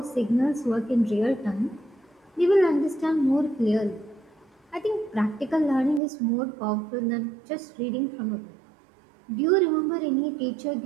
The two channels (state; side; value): drops out; left; at 6.0 s